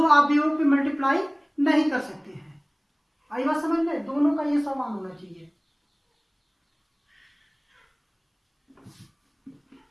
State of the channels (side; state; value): both; identical; correlation 1.00